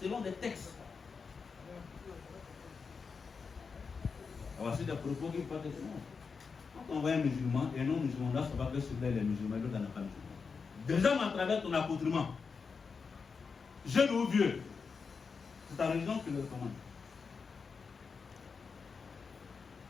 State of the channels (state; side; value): quieter; right; 5.3 dB